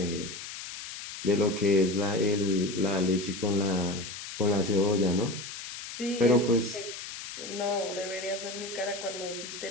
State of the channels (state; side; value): noise; left; hiss, 10 dB below the sound